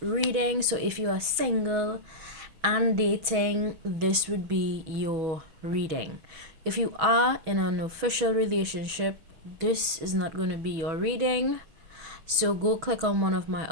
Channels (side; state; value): left; late; 6.2 ms